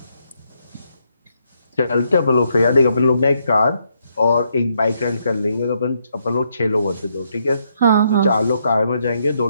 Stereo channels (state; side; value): inverted; both; correlation -0.76